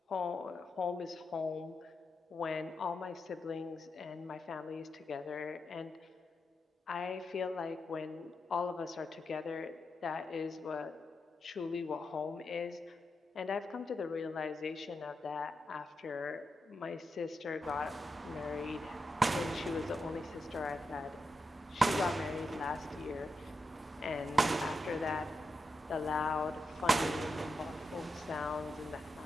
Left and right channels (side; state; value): both; normal; correlation 0.86